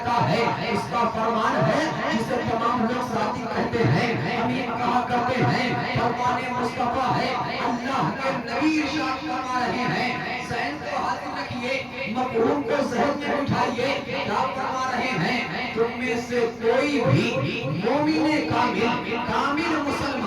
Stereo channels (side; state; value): both; identical; correlation 1.00